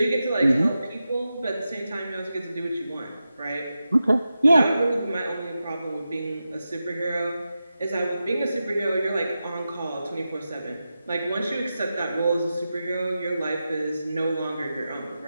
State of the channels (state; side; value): inverted; both; correlation -0.91